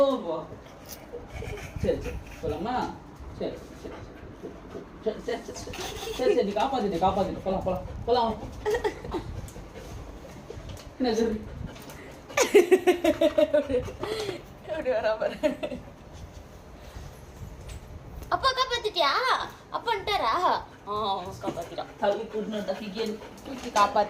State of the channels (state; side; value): identical; both; correlation 1.00